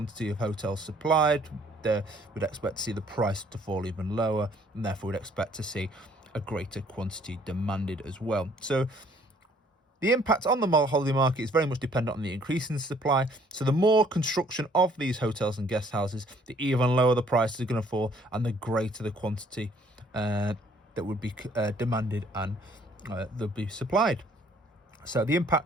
of hotels supplied, we'd expect to see the price to fall even lower, and therefore we'd expect to see a greater quantity demanded as well. So the impact on the holiday market is very much dependent on the increase in supply. So the more construction of these hotels and guest houses, the even lower the prices are going to fall, and the greater the quantity that would be demanded and they'll be supplied. So the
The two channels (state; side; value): normal; both; correlation 0.61